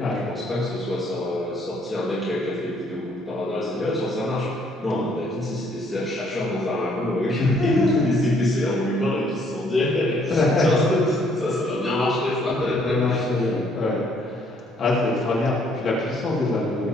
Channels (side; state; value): both; normal; correlation 0.65